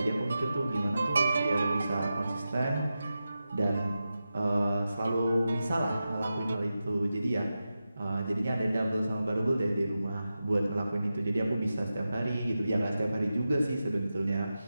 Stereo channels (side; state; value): both; inverted; correlation -0.92